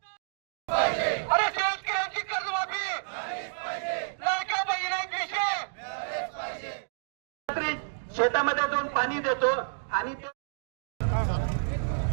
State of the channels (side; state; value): left; silent; digital silence